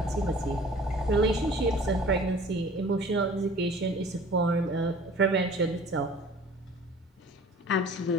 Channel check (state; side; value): normal; both; correlation 0.47